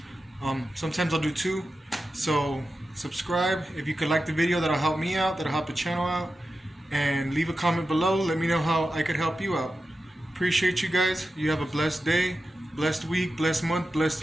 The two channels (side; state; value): both; normal; correlation 0.92